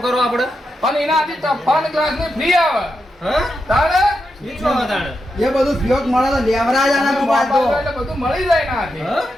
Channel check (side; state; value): both; normal; correlation 0.86